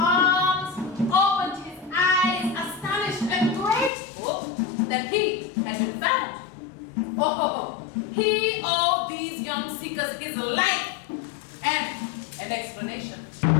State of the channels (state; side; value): drops out; right; at 3.9 s